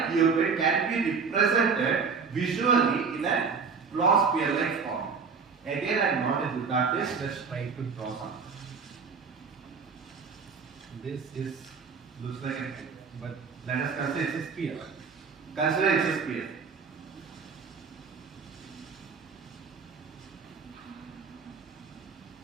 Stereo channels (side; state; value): left; quieter; 5.4 dB